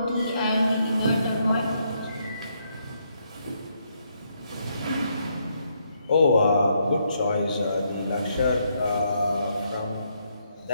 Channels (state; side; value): inverted; both; correlation -0.75